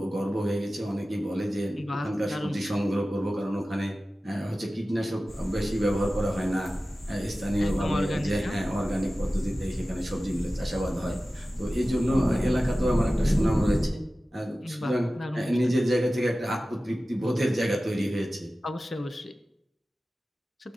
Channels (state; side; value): normal; both; correlation 0.96